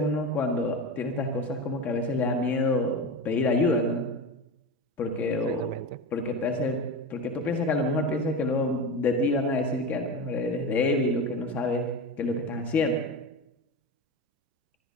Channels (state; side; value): normal; both; correlation 0.24